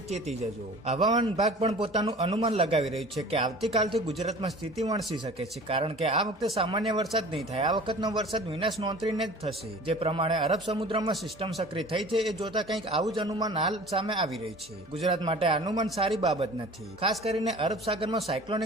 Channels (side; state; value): both; normal; correlation 0.43